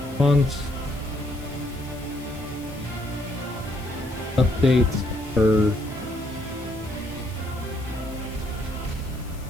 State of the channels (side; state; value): left; noise; hiss, 21 dB below the sound